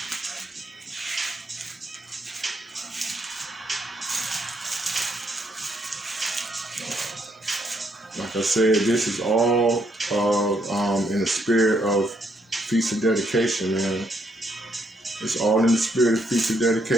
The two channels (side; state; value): both; normal; correlation 0.74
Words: like I said, this is all in the spirit of Feast of Dedication, man. It's all in the spirit of Feast of